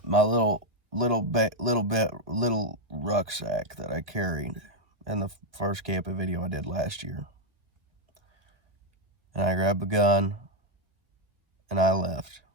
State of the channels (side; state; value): left; late; 2.0 ms